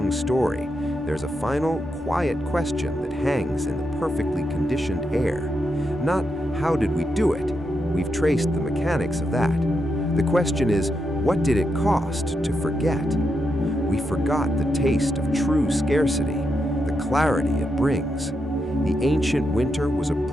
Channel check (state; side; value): normal; both; correlation 0.84